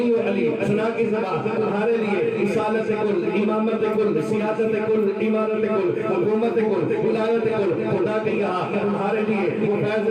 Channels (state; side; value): identical; both; correlation 1.00